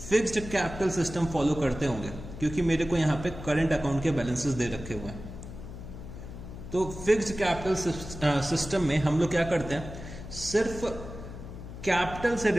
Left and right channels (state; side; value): noise; left; hum, 11 dB below the sound